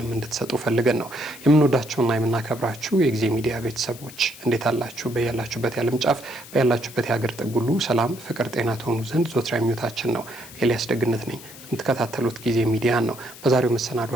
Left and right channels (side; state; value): left; noise; hiss, 17 dB below the sound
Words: እንድትሰጡ ፈልገን ነው። የምንወዳቸውና የምናከብራችሁ የጊዜ ሚዲያ ቤተሰቦች እንዴት አላችሁ? በያላችሁበት የዓለም ጫፍ በያላችሁበት የሀገር ጥግ ሁሉ ሰላም፣ ፍቅር፣ ጤና ትሆኑ ዘንድ ዘወትር ምኞታችን ነው። ኤልያስ ደግነት ነኝ። የምትከታተሉት ጊዜ ሚዲያን ነው። በዛሬው